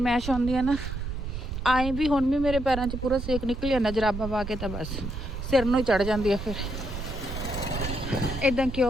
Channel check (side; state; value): right; noise; rumble, 6 dB below the sound